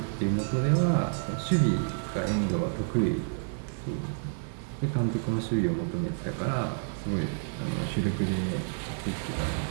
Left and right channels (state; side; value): silent; left; digital silence